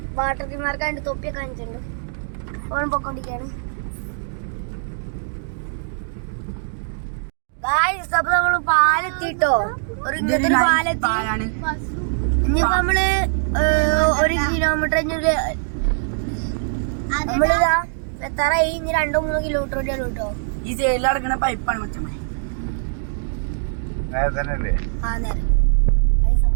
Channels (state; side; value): silent; left; digital silence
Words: വാട്ടർ തീമാർക്കാണ്ട് തൊപ്പിയൊക്കെ കാണിച്ചിട്ടുണ്ട്. അപ്പോൾ പൊക്കോണ്ടിരിക്കാണ് ഗായ്സ്. അപ്പൊ നമ്മള് പാലെത്തിട്ടോ, ഒരു ഇങ്ങനത്തെ ഒരു പാലെത്തി. ഇനിയിപ്പോ നമ്മള് 1 കിലോമീറ്റർ നമ്മളിതാ എത്താറായി. ഇനി 2-3 കിലോമീറ്റർ കൂടിയാണ് കേട്ടോ. ഈ സൈഡിൽ നടക്കുന്ന പൈപ്പാണ് മച്ചമ്മ. ആ നേരം